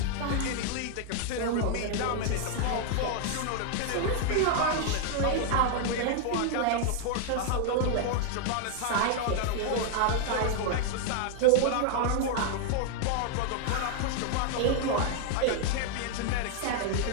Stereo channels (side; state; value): both; different; correlation 0.00